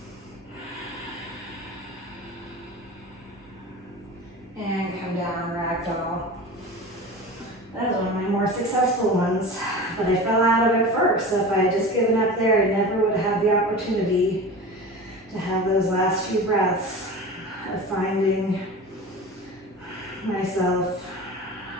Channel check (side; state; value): both; normal; correlation 0.33